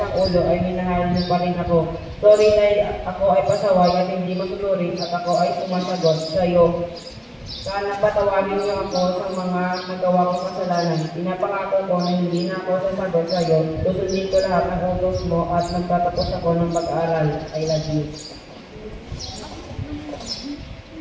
ulo ay minahal mo pa rin ako. Sorry dahil ako ay pasaway at hindi masunurin at ako ay sumasagot sa iyo. Sana patawarin niyo ako sa mga nagawa kong kasalanan. Pinapangako ko na hindi na ako sasagot sa iyo. Susundin ko lahat ng utos mo at magtatapos ako ng pag-aaral. I love you.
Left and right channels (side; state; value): both; identical; correlation 1.00